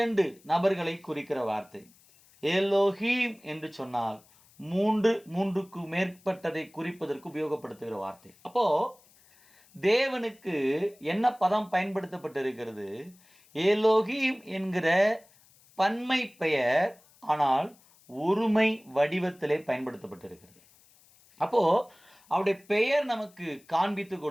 நபர்களை குறிக்கிற வார்த்தை. எலோஹீம் என்று சொன்னால் மூன்றுக்கு மேற்பட்டதை குறிப்பதற்கு உபயோகப்படுத்துகிற வார்த்தை. அப்போ தேவனுக்கு என்ன பதம் பயன்படுத்தப்பட்டிருக்கிறது? எலோஹீம் என்கிற பன்மை பெயர், ஆனால் ஒருமை வடிவத்திலே பயன்படுத்தப்பட்டிருக்கிறது. அப்போ அவருடைய பெயர் நமக்கு காண்பித்து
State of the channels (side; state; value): left; noise; hiss, 29 dB below the sound